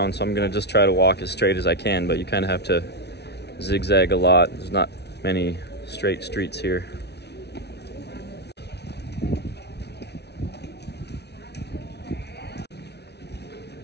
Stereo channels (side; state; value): right; late; 0.49 ms